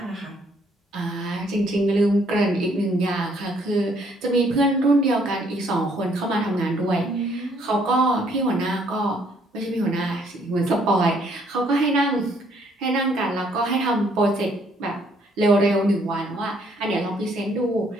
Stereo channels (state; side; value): normal; both; correlation 0.66